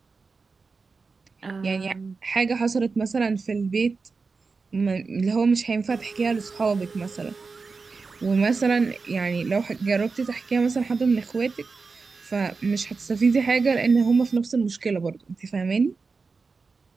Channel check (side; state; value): left; quieter; 4.5 dB